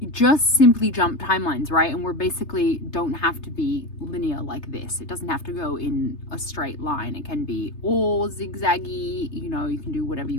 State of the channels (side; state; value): right; late; 3.3 ms